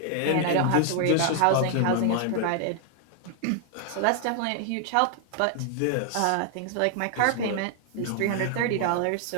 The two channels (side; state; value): both; different; correlation 0.00